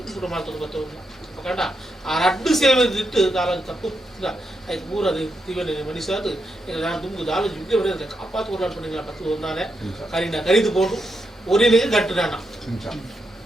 ಪುರ ಮಾಡ್ಕೊಂಡು ಬರ್ತವೆ ಅಪ್ಪಗಂಡ ಆ ರಡ್ಡು ಸೇವೆ ಇಟ್ಟು ದಾಲ ತಪ್ಪು ಆಯ್ತು ಮೂರದು ತಿವನೆ ಮನಿಸಾದು ನಾನು ತುಂಬು ದಾಲ ಜಿಗ್ಗೆ ಬರೆದ ಕಾಪಾತು ಕೊಡ್ಲಾಡ್ಕೊಂಡಿಲ್ಲ ಪತ್ತು ಒಂದಾನೆ ಕರಿದು போட்டு ஒரே கட்டு நானா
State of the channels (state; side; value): normal; both; correlation 0.83